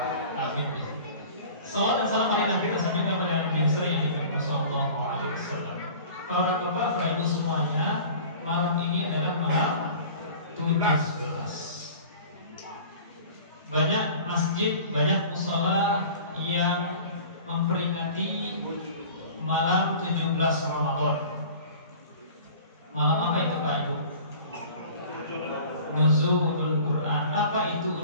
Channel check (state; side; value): inverted; both; correlation -0.43